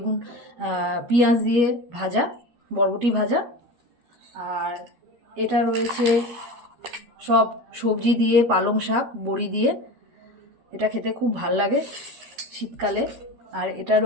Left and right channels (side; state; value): left; late; 12 ms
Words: পেঁয়াজ দিয়ে ভাজা, বরবটি ভাজা। আর এটা রয়েছে সব সবজি দিয়ে, পালং শাক, বড়ি দিয়ে। এটা খেতে খুব ভাল লাগে শীতকালে। আর এটা